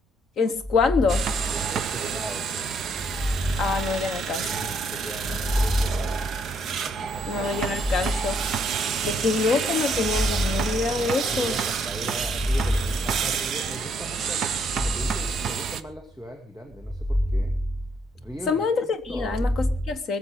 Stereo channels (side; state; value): both; normal; correlation 0.70